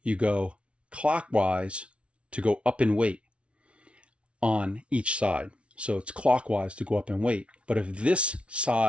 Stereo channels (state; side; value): late; left; 0.060 ms